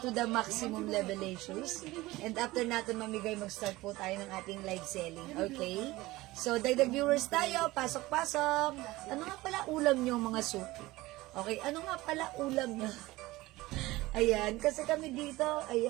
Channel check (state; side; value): quieter; left; 19.1 dB